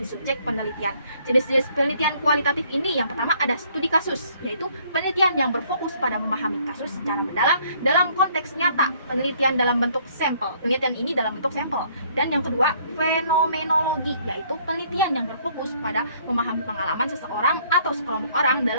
subjek penelitian. Jenis-jenis penelitian kualitatif ini yang pertama ada studi kasus, yaitu penelitian yang berfokus pada memahami kasus secara mendalam dalam konteks nyata, penelitian dalam bentuk sampel. Penelitian ini dalam bentuk sampel. Dan yang kedua, fenomenologi, yaitu penelitian yang berfokus pada memahami pengalaman seseorang atau sekelompok orang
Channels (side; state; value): both; inverted; correlation -0.63